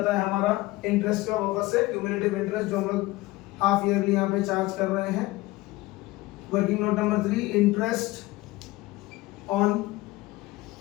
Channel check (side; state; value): right; quieter; 19.6 dB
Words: है हमारा इंटरेस्ट का वापस से क्यूमुलेटिव इंटरेस्ट जो हम लोग हाफ ईयरली यहाँ पे चार्ज कर रहे हैं। Working note number 3, interest on